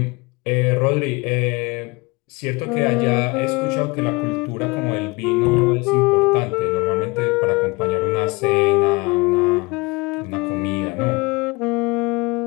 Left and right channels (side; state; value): right; quieter; 25.6 dB